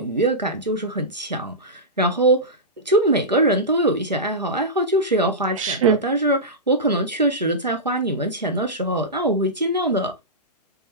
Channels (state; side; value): normal; both; correlation -0.15